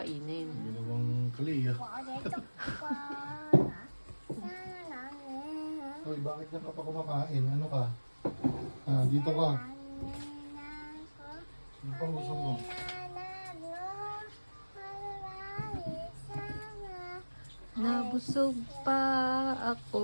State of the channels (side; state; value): both; inverted; correlation -1.00